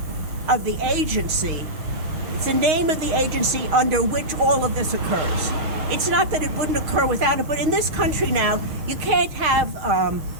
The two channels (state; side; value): late; left; 6.4 ms